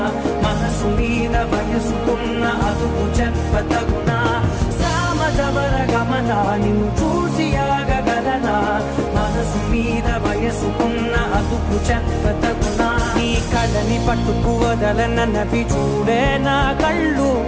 మనసు మీద వయసుకున్న అదుపు చెప్పతగునా సామజవర గమన నిన్ను చూసి ఆగగలనా మనసు మీద వయసుకున్న అదుపు చెప్పతగునా నీ కళ్ళని పట్టుకు వదలనవి చూడే నా కళ్ళు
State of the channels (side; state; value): both; identical; correlation 1.00